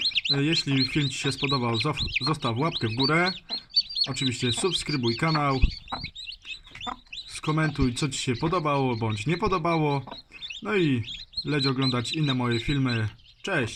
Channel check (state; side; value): identical; both; correlation 1.00